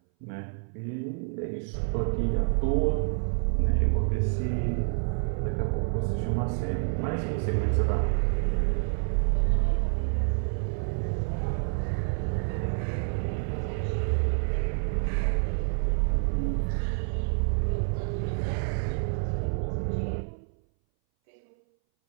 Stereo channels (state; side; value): silent; left; 59 dB below the other